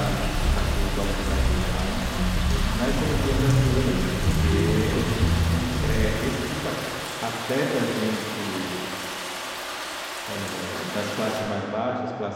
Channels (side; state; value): both; identical; correlation 1.00